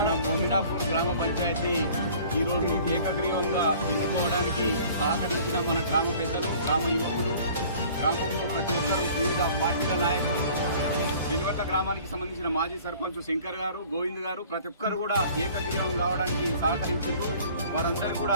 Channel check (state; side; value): inverted; both; correlation -0.50